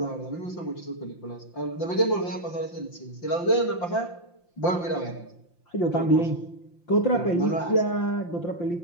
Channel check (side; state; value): right; late; 5.8 ms